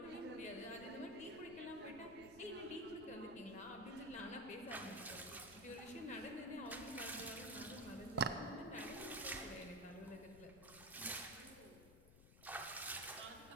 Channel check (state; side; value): noise; left; rumble, 17 dB below the sound